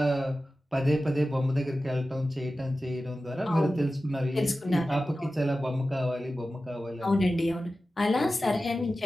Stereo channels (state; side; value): normal; both; correlation 0.94